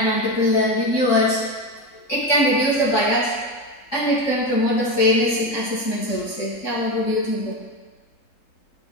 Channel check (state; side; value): late; right; 3.6 ms